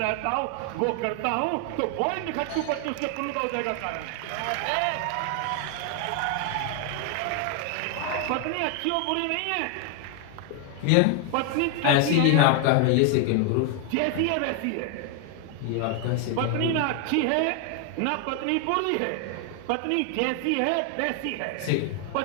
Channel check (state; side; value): different; both; correlation 0.00